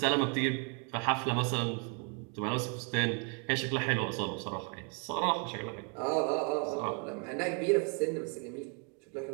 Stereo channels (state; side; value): quieter; left; 37.9 dB